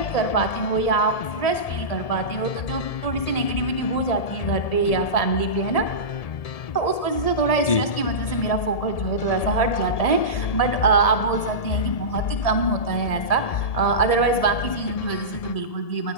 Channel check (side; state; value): right; late; 1.7 ms